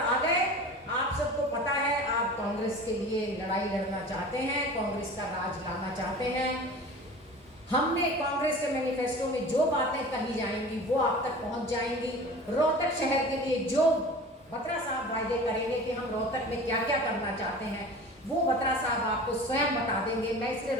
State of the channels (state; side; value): normal; both; correlation 0.38